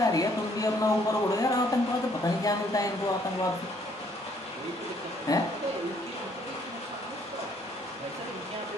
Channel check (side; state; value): both; normal; correlation 0.65